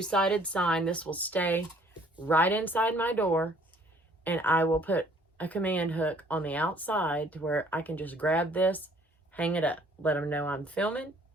sign. This will stay right inside my door. And I will put a command hook on the outside to where I can just grab this, hang it up, let them know I'm filming.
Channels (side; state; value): both; normal; correlation 0.59